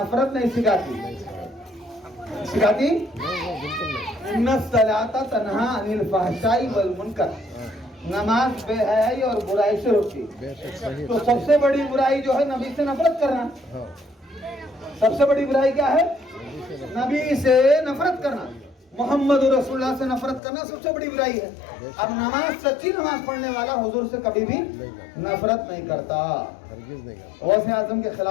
नहीं सिखाती, सिखाती इन्ना सलाता तन्हा अनिल फहशाई वल मुनकर, नमाज बेहयाई और बुराई से रोकती। तो सबसे बड़ी बुराई जो है नबी से नफरत करना। सबसे बड़ी बुराई क्या है? नबी से नफरत करना, मोहम्मद रसूलुल्लाह से नफरत करना सबसे बड़ी बुराई है। अब नमाज, सच्ची नमाज पढ़ने वाला हुजूर से कभी भी नफरत नहीं करता, गौसे आजम के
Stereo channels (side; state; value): right; drops out; at 20.4 s